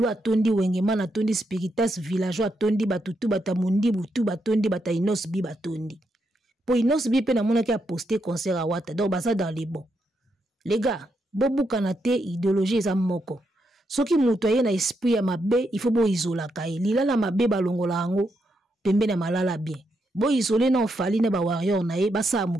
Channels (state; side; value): normal; both; correlation 0.81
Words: atondi wengeman atondi spiritas villageois atondi batutu batamundi butu batondi bata inos bi batondi. Po inos bi pe na mona ki a posté concert à Wata. Donc basa dans les bons. Les gars, bobu kanate idéologie za moko. Soki mutu aye na esprit ya mabe, il faut bo isola kai. Lila la mabe balongola ango pembe na malala bien. Bo isolé na Fali na ba warrior na ye basa